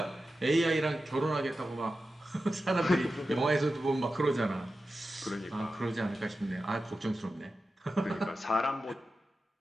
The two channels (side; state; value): both; normal; correlation 0.92